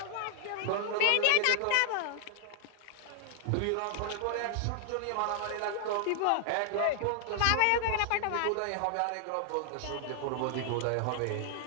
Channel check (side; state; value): both; different; correlation -0.01